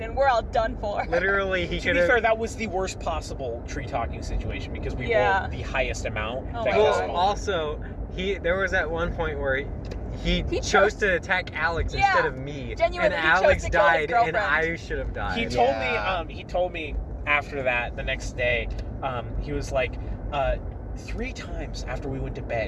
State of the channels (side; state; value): both; identical; correlation 1.00